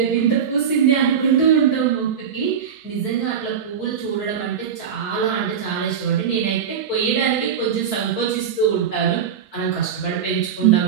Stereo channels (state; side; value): quieter; left; 7.6 dB